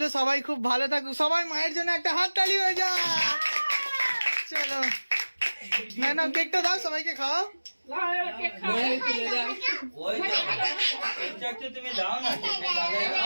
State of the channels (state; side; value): inverted; both; correlation -1.00